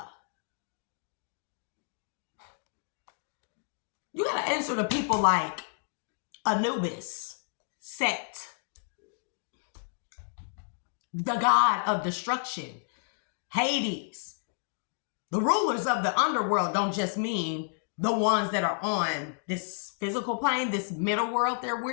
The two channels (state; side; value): silent; right; digital silence